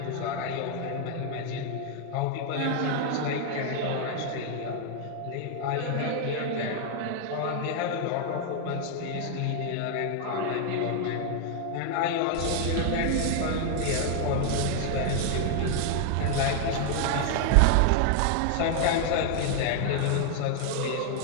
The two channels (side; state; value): both; different; correlation 0.00